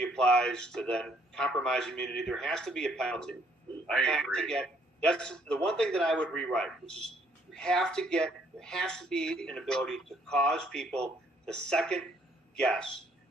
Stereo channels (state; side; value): normal; both; correlation 0.66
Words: applies, to then compromise immunity. There has to be a penalty. I agree. That's the one thing that I would rewrite, which is there has to be an ability to cause people to second guess,